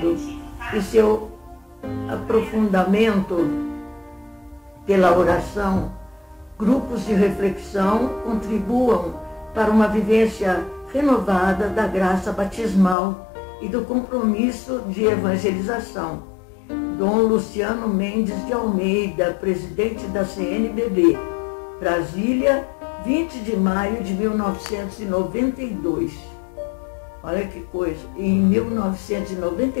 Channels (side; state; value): right; drops out; at 13.0 s